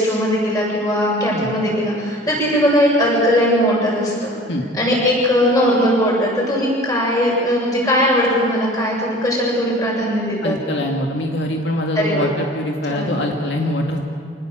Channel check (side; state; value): both; normal; correlation 0.45